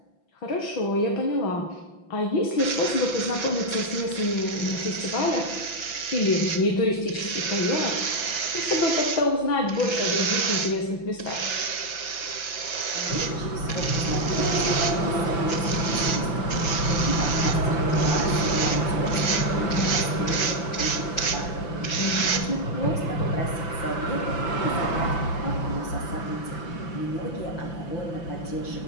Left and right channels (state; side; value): late; right; 5.9 ms